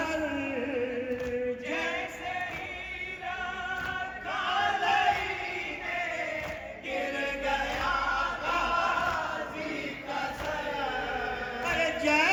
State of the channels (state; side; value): identical; both; correlation 1.00